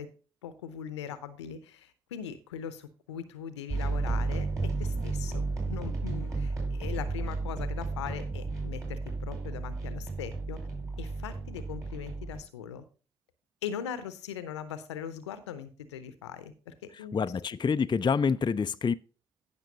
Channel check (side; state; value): both; normal; correlation 0.69